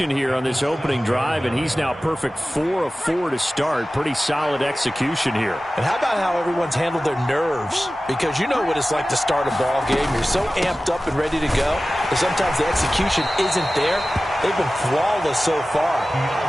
here on this opening drive, and he's now perfect 4 of 4 to start. Pretty solid execution here. And how about how everyone's handled their nerves? Because you know what it's like to start a ball game. You're so amped up and ready to go, but sometimes the execution isn't there. They've been flawless so far.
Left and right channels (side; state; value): both; normal; correlation 0.96